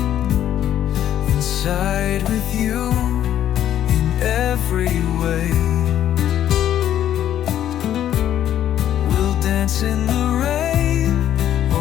Inside with you in every way. We'll dance in the rain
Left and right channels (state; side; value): quieter; right; 11.1 dB